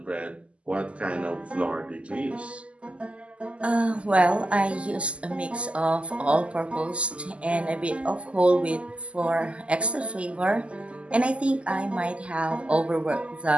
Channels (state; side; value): late; left; 0.058 ms